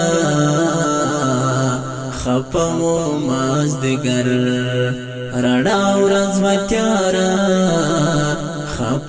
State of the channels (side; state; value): both; identical; correlation 1.00